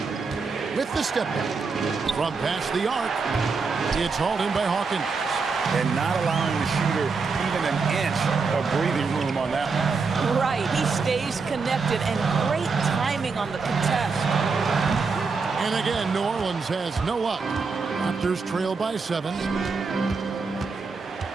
With the step back. From past the arc. It's hauled in by Hawkins. And not allowing the shooter even an inch of breathing room on that one. Right, he stays connected, and great timing on the contest. And again, New Orleans has no luck. Raptors trail by 7.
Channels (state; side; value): quieter; left; 4.7 dB